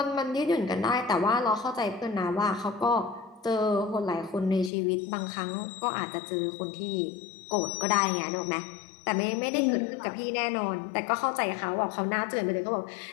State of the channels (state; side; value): drops out; right; at 4.7 s